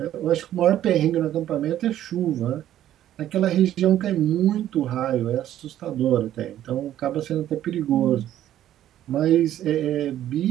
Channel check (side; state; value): left; quieter; 12.1 dB